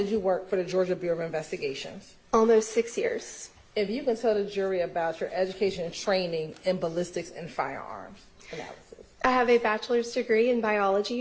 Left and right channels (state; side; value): identical; both; correlation 1.00